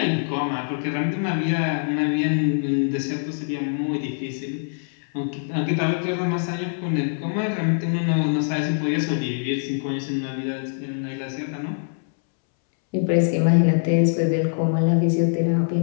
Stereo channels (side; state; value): right; silent; 63 dB below the other